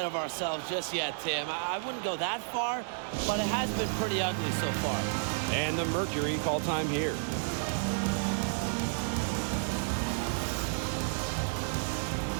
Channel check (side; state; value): left; silent; digital silence